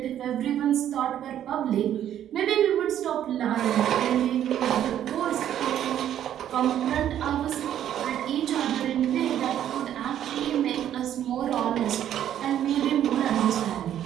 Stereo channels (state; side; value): quieter; left; 10.8 dB